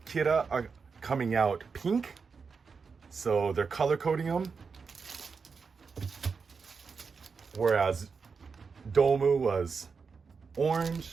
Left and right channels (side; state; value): left; quieter; 5.3 dB